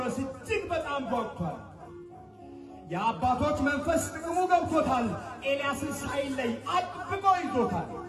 እጅግ በጣም ጓጉቷል። የአባቶች መንፈስ ጥቅሙ ገብቶታል። ኤልያስን ሳይለይ አጥብቆ ይዞታል።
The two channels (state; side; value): identical; both; correlation 1.00